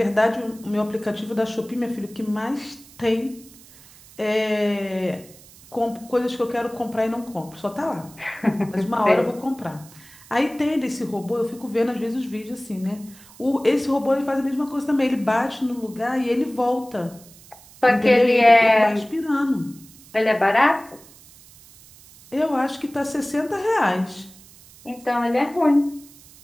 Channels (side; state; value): right; noise; hiss, 23 dB below the sound